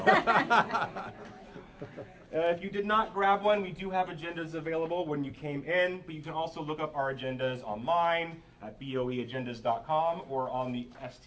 If you did not grab one, we do have agendas available when you came in, but you can also look up our agendas online at boeagendas.com or on the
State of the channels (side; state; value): both; identical; correlation 1.00